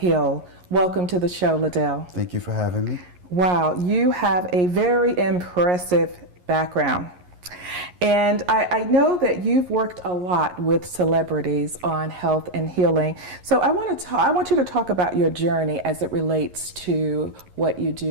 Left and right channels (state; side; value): late; left; 11 ms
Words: Welcome to the show, Ladell. Thank you for having me. Wow, you have a very impressive background. And I know that you've worked a lot with celebrities on health and healing. So I want you to talk about your journey as it relates to what you